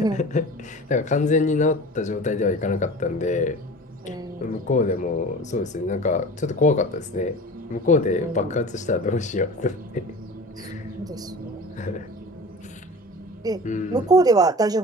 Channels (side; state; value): both; normal; correlation 0.37